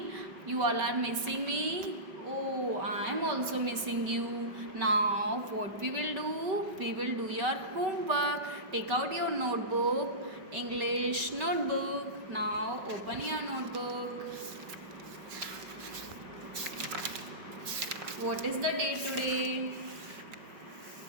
You all are missing me? Oh, I am also missing you. Now, what we will do? We will do your homework. Take out your notebook, English notebook. Now, open your notebook. What is the date today?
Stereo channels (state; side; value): late; left; 5.2 ms